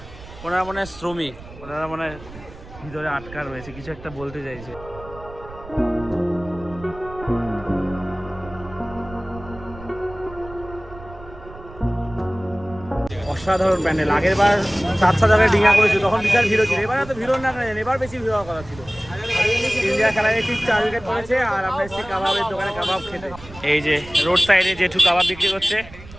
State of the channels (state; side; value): noise; right; rumble, 17 dB below the sound